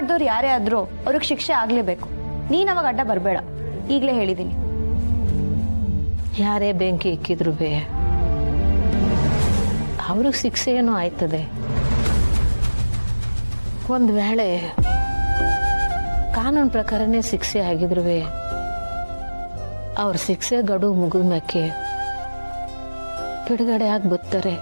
ಯಾರೇ ಆದ್ರೂ ಅವ್ರಿಗೆ ಶಿಕ್ಷೆ ಆಗ್ಲೇಬೇಕು. ನೀನ್ ಅವಾಗ ಅಡ್ಡ ಬರಬೇಡ, ಈಗಲೇ ಹೇಳಿದೀನಿ. ಯಾರೇ ಬೆಂಕಿ ಇಕ್ಕಿದ್ರು ಅವ್ರಿಗೆ ಶಿಕ್ಷೆ ಏನೋ ಆಯ್ತದೆ. ಒಂದು ವೇಳೆ ಕಾನೂನು ಪ್ರಕಾರನೇ ಶಿಕ್ಷೆ ಆಗಿದ್ರು ಅವ್ರ ಶಿಕ್ಷೆ ಗಡುವು ಮುಗಿದ ಮ್ಯಾಕೆ ಬಿಡುಗಡೆ ಆಗಿ ಬರ್ತಾರೆ.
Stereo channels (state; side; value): inverted; both; correlation -1.00